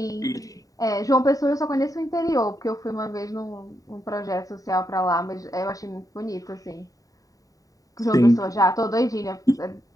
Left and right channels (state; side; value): late; right; 0.17 ms